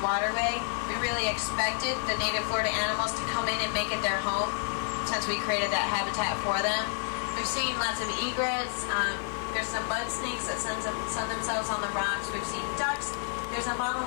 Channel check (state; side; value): silent; right; 56 dB below the other